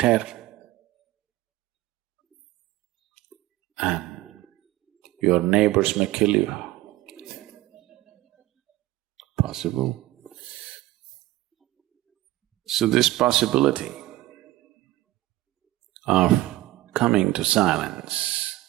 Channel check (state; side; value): quieter; left; 16.6 dB